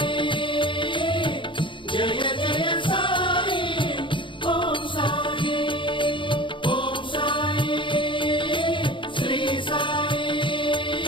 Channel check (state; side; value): late; right; 0.24 ms